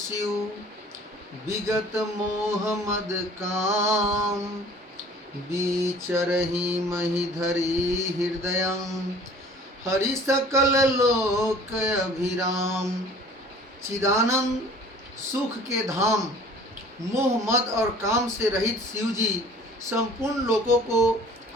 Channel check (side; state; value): both; normal; correlation 0.49